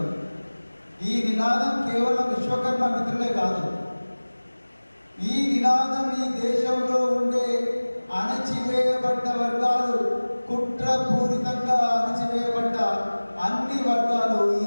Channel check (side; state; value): both; inverted; correlation -1.00